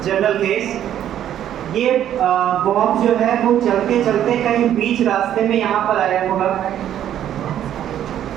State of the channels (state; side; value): quieter; left; 10.8 dB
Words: जनरल केस, ये बॉब जो है वो चलते चलते कहीं बीच रास्ते में यहाँ पर आया होगा,